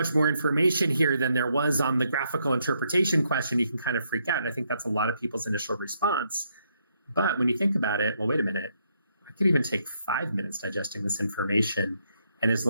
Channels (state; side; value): inverted; both; correlation -0.76